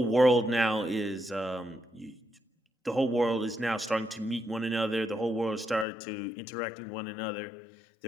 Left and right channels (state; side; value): drops out; right; at 5.9 s